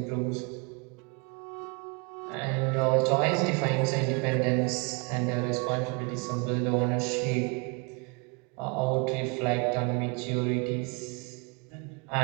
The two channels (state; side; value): quieter; left; 31.5 dB